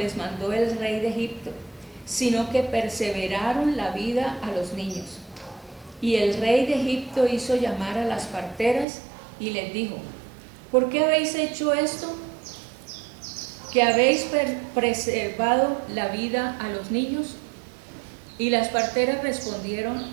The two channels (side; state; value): left; drops out; at 8.8 s